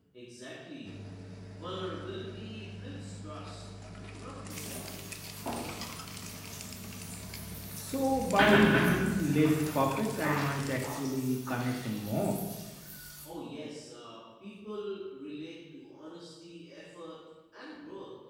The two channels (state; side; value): identical; both; correlation 1.00